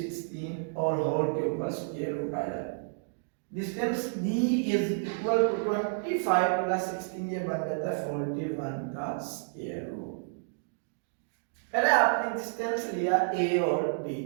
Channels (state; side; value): silent; left; digital silence